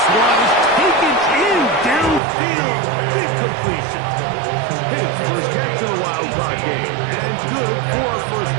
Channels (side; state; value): left; drops out; at 2.2 s